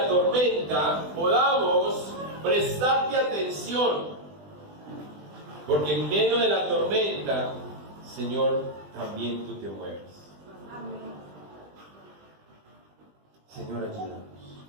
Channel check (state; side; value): late; left; 20 ms